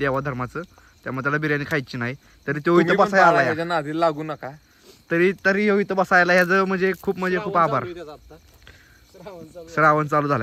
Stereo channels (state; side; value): identical; both; correlation 1.00